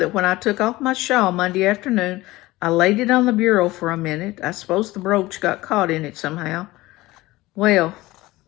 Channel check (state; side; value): quieter; right; 18.9 dB